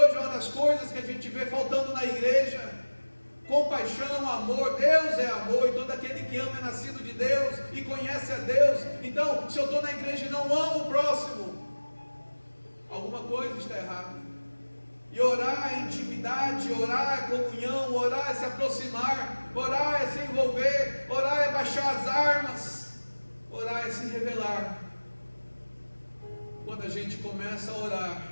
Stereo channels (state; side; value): inverted; both; correlation -1.00